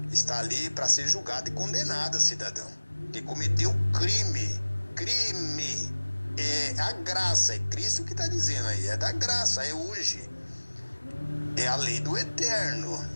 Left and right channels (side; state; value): both; inverted; correlation -1.00